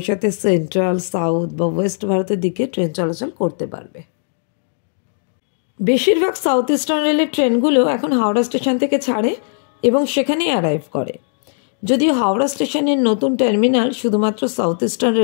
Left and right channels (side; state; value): right; silent; 67 dB below the other